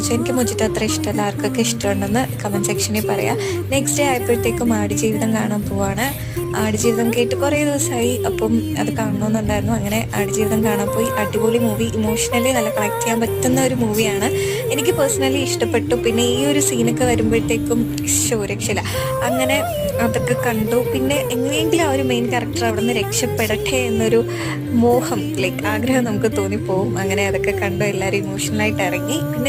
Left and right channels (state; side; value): identical; both; correlation 1.00